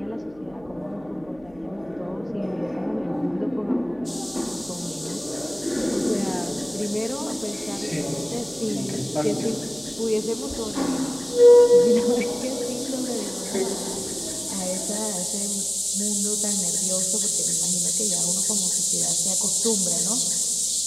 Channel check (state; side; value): noise; left; hum, 25 dB below the sound